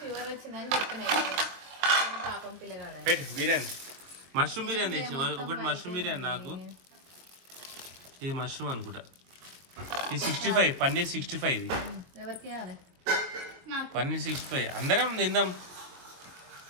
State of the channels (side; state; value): left; late; 22 ms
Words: వచ్చిందని చెప్పిన. పాపం పిల్లగాడ. పెట్టు బిర్యానీ. మష్రూమ్ బిర్యానీ తెచ్చి ఒకటి. మష్రూమ్ బిర్యానీ నాకు. ఇది మష్రూమ్ అనుకుంటా. ఇది 65, పన్నీర్ 65. ఇది ఎవరికి పన్నీర్ 65. అందరం తిందాం.